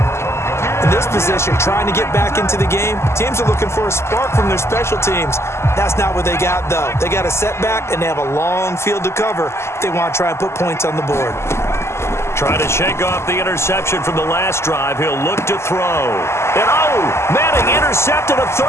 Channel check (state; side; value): late; right; 0.13 ms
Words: In this position, trying to get back into the game, teams are looking for a spark from their special teams. That's not what they got, though. They got a setback, and they have a long field to cover if they want to try and put points on the board. Trying to shake off the interception from the last drive. He'll look to throw. And, Manning intercepted a